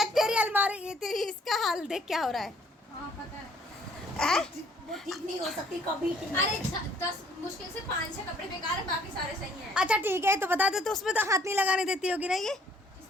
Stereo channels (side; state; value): both; normal; correlation 0.61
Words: तेरी अलमारी, ये तेरी, इसका हाल देख क्या हो रहा है। हाँ पता है। वो ठीक नहीं हो सकती कभी। अरे 10 मुश्किल से 5-6 कपड़े बेकार है, बाकी सारे सही हैं। अच्छा ठीक है, तो बता दे, तो उसमें तो हाथ नहीं लगाने देती होगी ना ये?